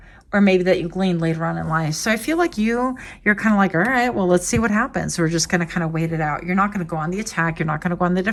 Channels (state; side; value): identical; both; correlation 1.00